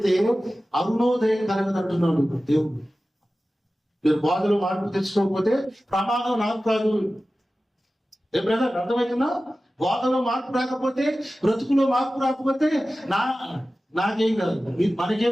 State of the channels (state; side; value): normal; both; correlation 0.95